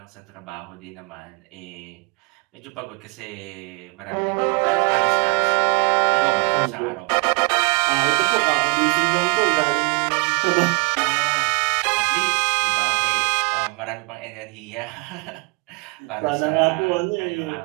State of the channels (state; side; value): quieter; left; 31.7 dB